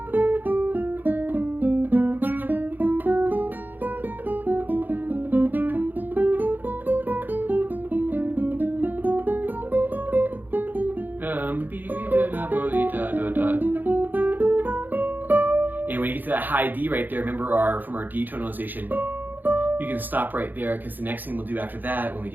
And when you get to that high D right there, remember from our D tonalization, you can stop right there, because the next thing we'll do after that, when we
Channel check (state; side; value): late; left; 0.087 ms